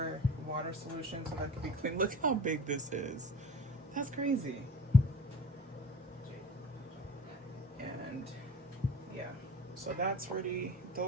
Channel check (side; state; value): both; normal; correlation 0.42